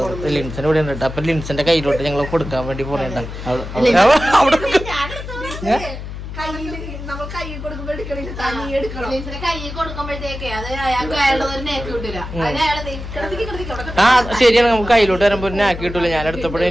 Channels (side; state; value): left; noise; hum, 9 dB below the sound